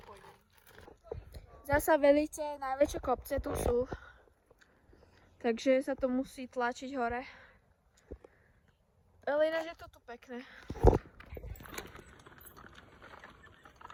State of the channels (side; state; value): both; identical; correlation 1.00